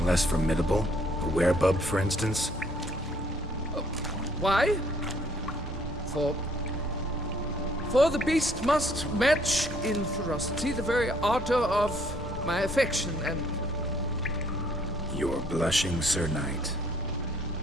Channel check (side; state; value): both; normal; correlation 0.64